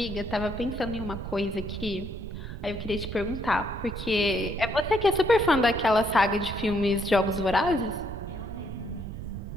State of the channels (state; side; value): noise; right; rumble, 8 dB below the sound